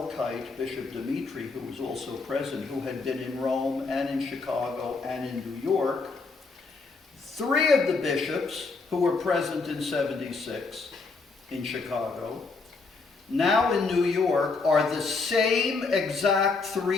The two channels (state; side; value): quieter; right; 4.2 dB